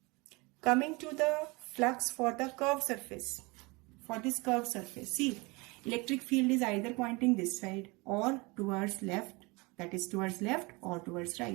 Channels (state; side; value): quieter; left; 26.1 dB